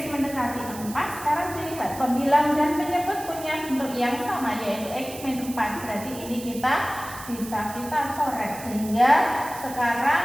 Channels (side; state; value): right; noise; hiss, 14 dB below the sound